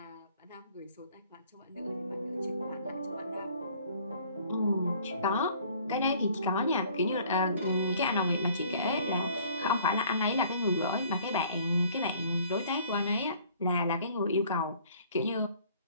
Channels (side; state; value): both; inverted; correlation -0.56